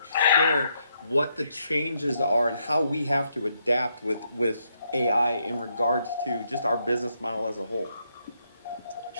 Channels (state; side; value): inverted; both; correlation -0.77